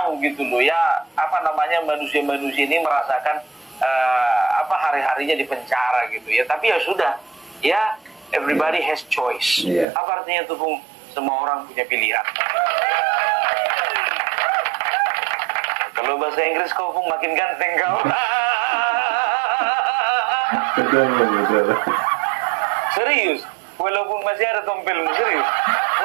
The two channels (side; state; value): left; drops out; at 9.9 s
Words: gitu loh ya, apa namanya, manusia-manusia ini merasakan apa hari-harinya di penjara gitu ya. Tapi ya sudah ya, everybody has choice. Apa artinya tuh, Bung? semua orang punya pilihan. Kalau bahasa Inggris kau pun makin ganteng kau. Betul, betul. Serius, walaupun masih ada tompelmu, serius.